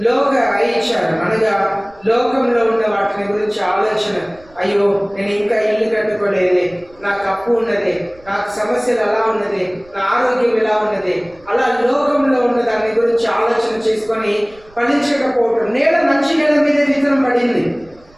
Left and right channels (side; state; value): right; noise; rumble, 27 dB below the sound